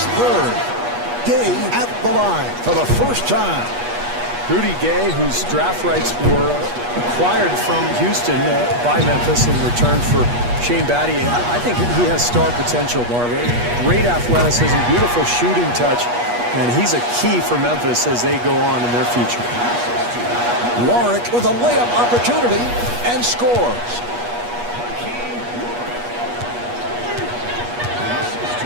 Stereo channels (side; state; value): left; late; 8.3 ms